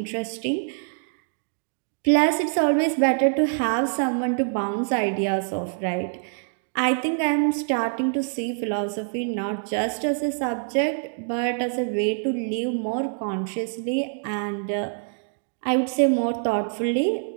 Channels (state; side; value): silent; left; digital silence